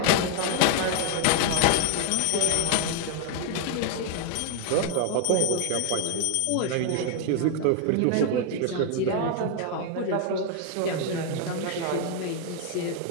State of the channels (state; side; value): different; both; correlation 0.00